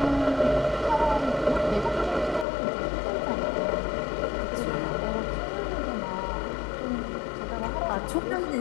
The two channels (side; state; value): right; drops out; at 2.5 s